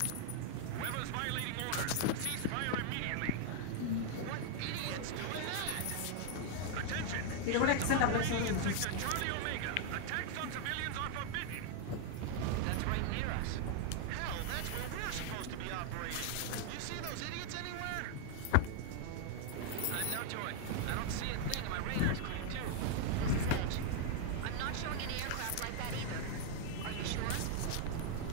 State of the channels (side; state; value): both; different; correlation 0.00